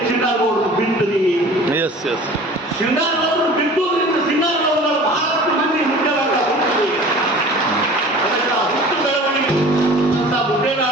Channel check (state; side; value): normal; both; correlation 0.43